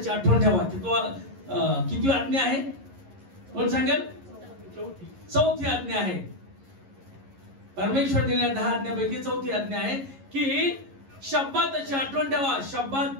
आठवण ठेवा. किती आज्ञा आहे? कोण सांगेल? 4थी आज्ञा आहे. परमेश्वर दिलेल्या 10 आज्ञापैकी 4थी आज्ञा आहे की शब्दाची आठवण ठेवा, शब्दात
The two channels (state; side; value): late; left; 11 ms